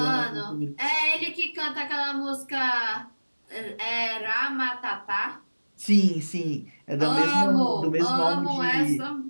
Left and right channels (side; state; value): both; inverted; correlation -1.00